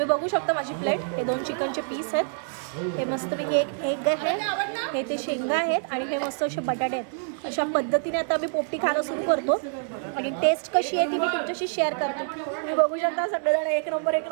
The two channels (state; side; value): silent; left; 57 dB below the other